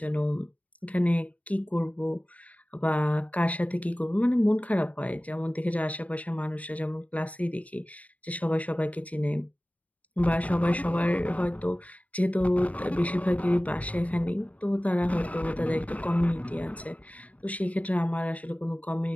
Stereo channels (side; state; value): right; late; 0.070 ms